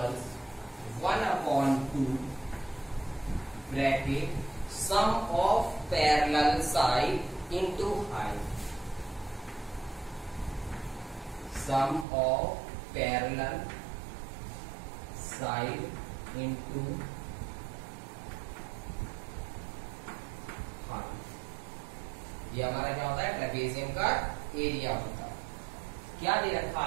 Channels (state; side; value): drops out; left; at 12.1 s